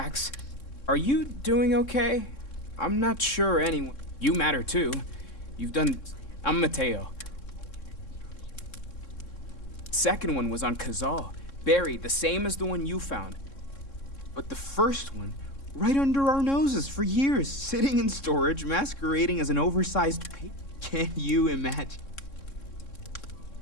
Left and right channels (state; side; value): late; right; 3.6 ms